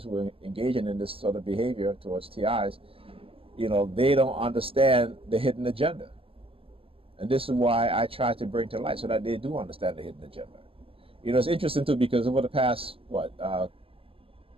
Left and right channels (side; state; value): left; late; 0.27 ms